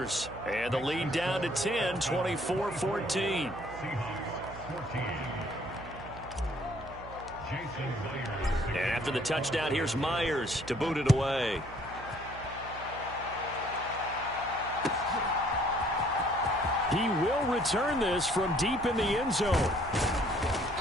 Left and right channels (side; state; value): right; noise; hum, 15 dB below the sound